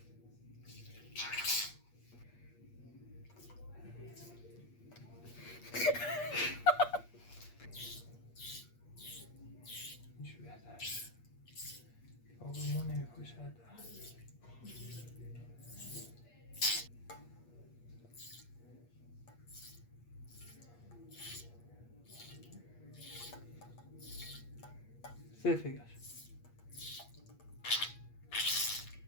اینجوری بهتر. آب ما نمیپاشد. سه فکر.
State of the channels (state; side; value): late; right; 8.5 ms